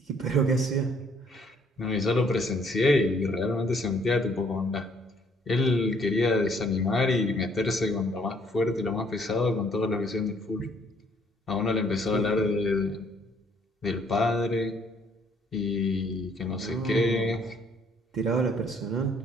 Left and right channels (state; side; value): normal; both; correlation 0.64